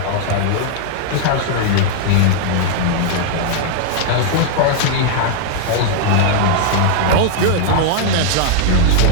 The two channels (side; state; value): both; different; correlation 0.00